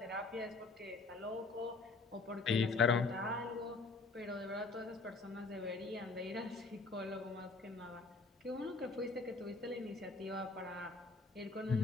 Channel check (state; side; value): quieter; right; 3.7 dB